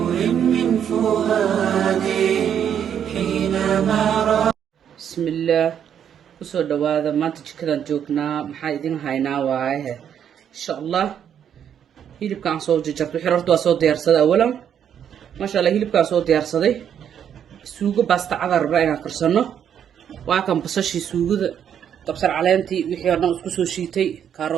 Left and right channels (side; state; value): left; quieter; 8.9 dB